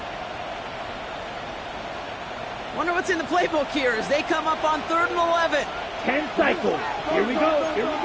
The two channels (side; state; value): both; identical; correlation 1.00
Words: Wonder what's in the playbook here as they come up on 3rd and 11. 10 cycles. Here we go.